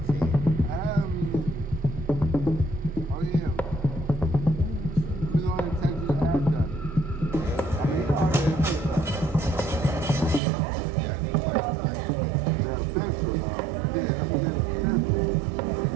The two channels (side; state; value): left; drops out; at 10.4 s